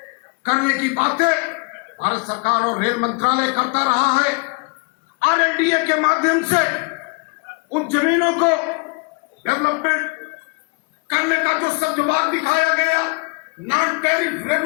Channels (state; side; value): quieter; right; 32.4 dB